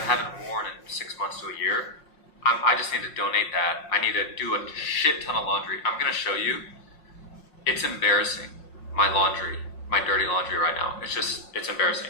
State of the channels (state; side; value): late; right; 5.6 ms